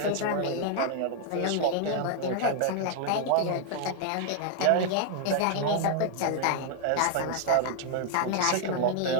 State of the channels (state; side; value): different; both; correlation 0.00